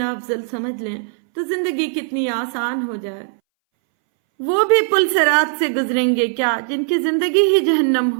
افضل سمجھ لیں تو زندگی کتنی آسان ہو جائے۔ وہ بھی پل صراط سے گزریں گے کیا جن کی زندگی ہی جہنم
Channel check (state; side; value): silent; left; 63 dB below the other